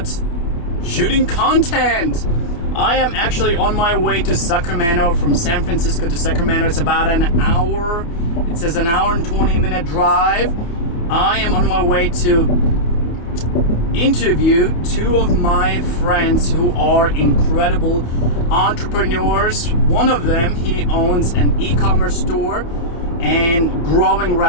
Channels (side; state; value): right; late; 29 ms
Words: shooting content. I am actually on my way to Sacramento. From San Francisco to Sacramento, it's about an hour. It says an hour and 20-minute drive. I am on my way to interview two of my friends who are incredible entrepreneurs. One of them, he owns an e-commerce store and growing